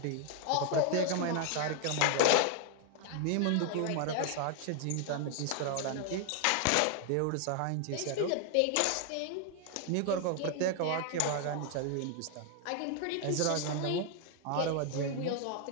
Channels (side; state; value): both; different; correlation 0.00